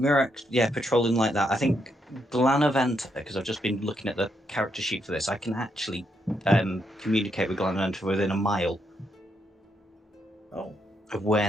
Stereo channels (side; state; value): both; normal; correlation 0.78